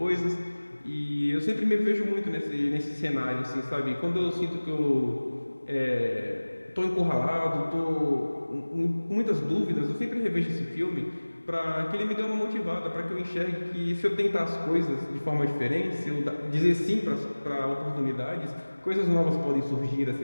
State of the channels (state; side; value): inverted; both; correlation -1.00